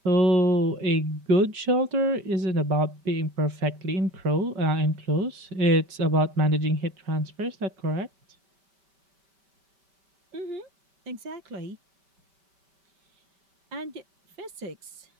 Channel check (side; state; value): left; late; 5.2 ms